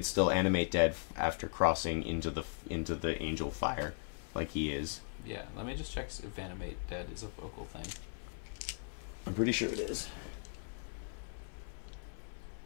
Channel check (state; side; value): silent; right; 52 dB below the other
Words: still animate dead after crossing into the angel fire, like he is. Yeah, let me just check if animate dead is a vocal thing. I'm pretty sure it is.